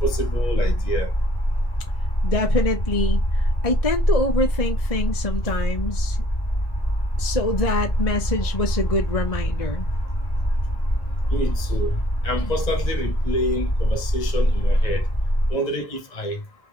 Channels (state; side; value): late; right; 1.6 ms